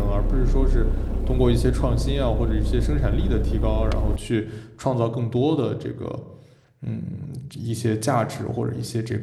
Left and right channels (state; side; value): identical; both; correlation 1.00